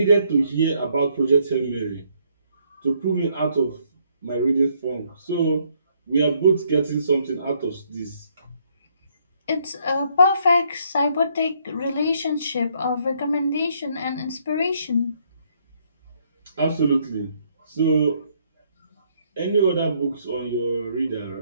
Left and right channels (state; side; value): inverted; both; correlation -0.69